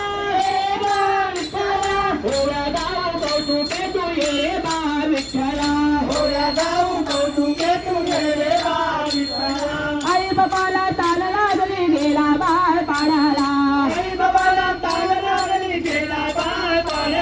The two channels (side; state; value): both; identical; correlation 1.00